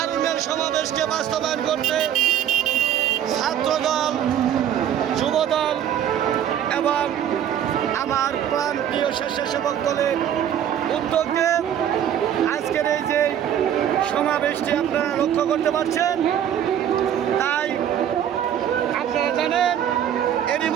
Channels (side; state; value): left; quieter; 10.0 dB